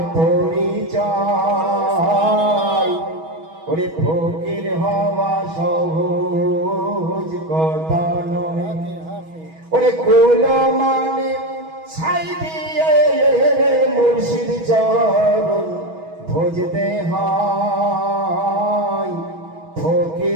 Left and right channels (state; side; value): late; left; 6.2 ms